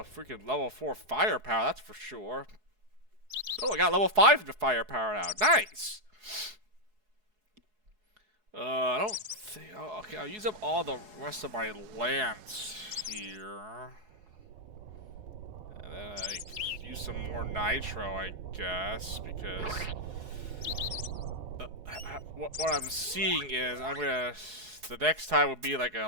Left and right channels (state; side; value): late; left; 4.7 ms